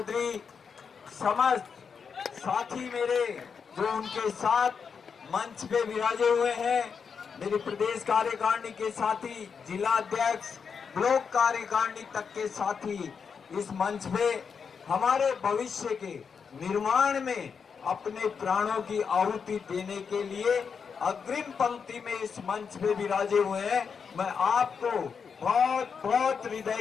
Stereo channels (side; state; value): right; quieter; 6.1 dB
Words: समस्त साथी मेरे जो उनके साथ मंच पे विराजे हुए हैं, मेरी प्रदेश कार्यकारिणी के साथी, जिला अध्यक्ष, ब्लॉक कार्यकारिणी तक के साथी, इस मंच पे हमारे भविष्य के निर्माण में अपने प्राणों की आहुति देने के लिए अग्रिम पंक्ति में इस मंच पे विराजे हुए हैं। मैं आपको बहुत बहुत हृदय